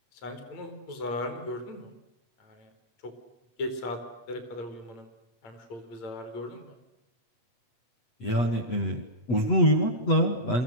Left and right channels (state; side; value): late; right; 8.2 ms